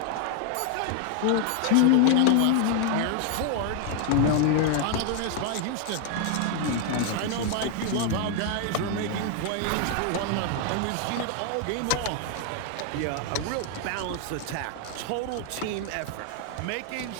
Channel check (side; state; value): both; different; correlation 0.00